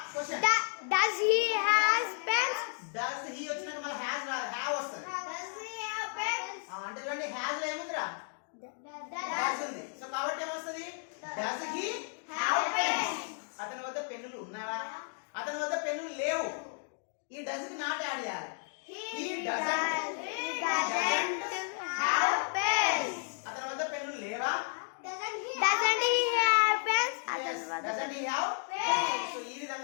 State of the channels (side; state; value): right; silent; 56 dB below the other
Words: Question. Does he has pens? Does he వచ్చినట్టు మళ్ళీ హ్యాస్ హ్యావ్ వస్తుంది. Does he have pens? అంటే చూడండి హ్యాస్ లో ఏముందిరా? డస్ ఉంది. సో కాబట్టి ఏమొస్తుంది? Does he have pens? అతని వద్ద పెన్నులు ఉన్నవా? అతని వద్ద పెన్నులు లేవు. ఈ డస్ కి నాట్ యాడ్ చేయాలి. He doesn't have pens. అతని వద్ద పెన్నులు లేవా? Doesn't he have pens? Doesn't he have pens? So ఈ